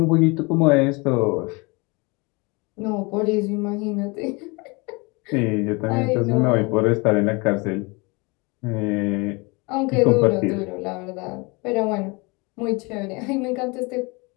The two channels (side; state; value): right; quieter; 27.7 dB